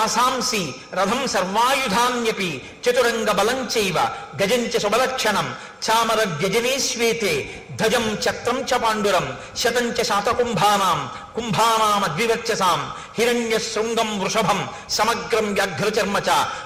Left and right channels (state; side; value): identical; both; correlation 1.00